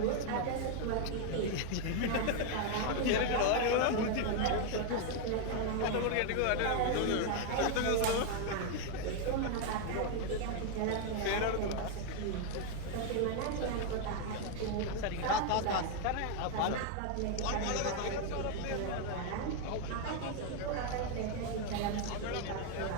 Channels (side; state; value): both; different; correlation 0.00